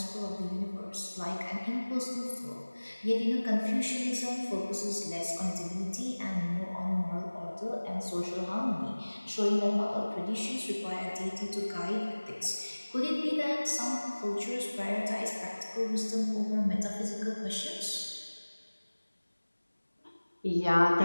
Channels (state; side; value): inverted; both; correlation -1.00